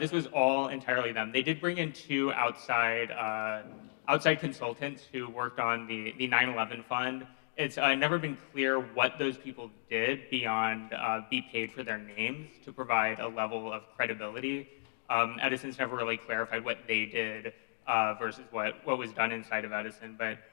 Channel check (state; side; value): silent; right; digital silence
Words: was all entirely them. They did bring in two outside consultants who worked on the 9/11 fund. It's never been clear what those people did beyond be paid for their names to provide a level of credibility. Edison's never really clarified what they did versus what was done inside of Edison.